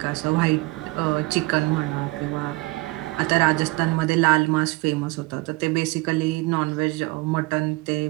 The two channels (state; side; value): quieter; left; 23.1 dB